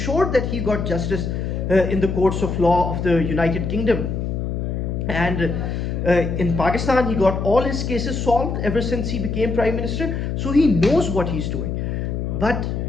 that he got justice in the courts of law of the United Kingdom. And in Pakistan, he got all his cases solved ever since he became Prime Minister, so he knows what he's doing. But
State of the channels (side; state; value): left; noise; hum, 2 dB below the sound